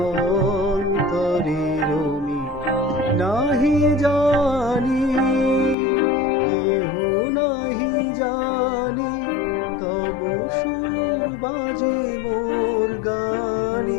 অন্তরের মিল। নাহি জানি কেহ নাহি জানি, তব সুর বাজে মোর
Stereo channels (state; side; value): drops out; right; at 5.8 s